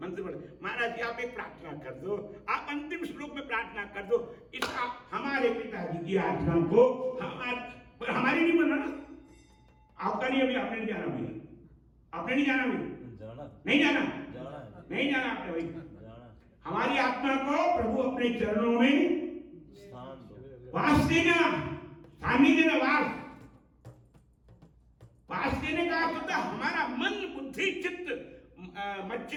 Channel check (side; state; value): both; identical; correlation 1.00